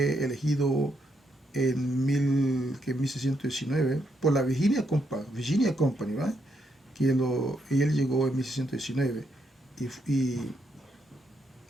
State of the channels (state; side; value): normal; both; correlation 0.77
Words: elegido en 1619 por la Virginia Company, ¿verdad? Y él llegó en 1619 y